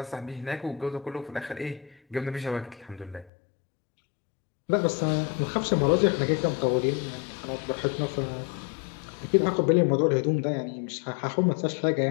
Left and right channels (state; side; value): drops out; right; at 3.3 s